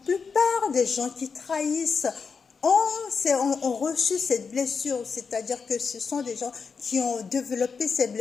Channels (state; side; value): quieter; right; 5.5 dB